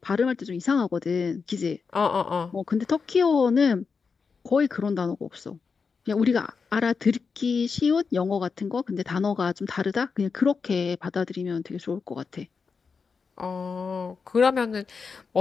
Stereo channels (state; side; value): quieter; right; 5.3 dB